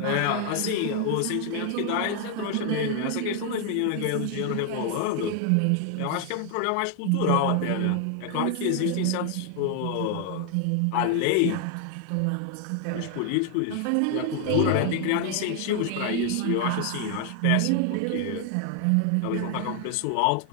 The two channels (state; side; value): different; both; correlation 0.00